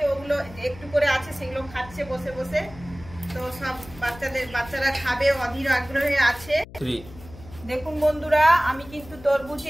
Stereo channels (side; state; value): left; noise; hum, 18 dB below the sound